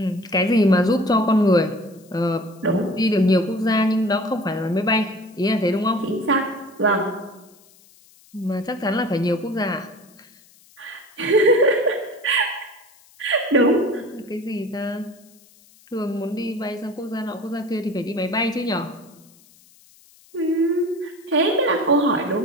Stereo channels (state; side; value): noise; left; hiss, 28 dB below the sound